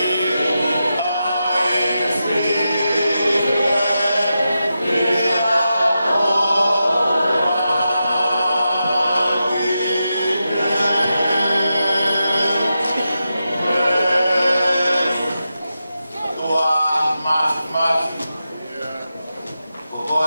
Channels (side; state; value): both; inverted; correlation -0.89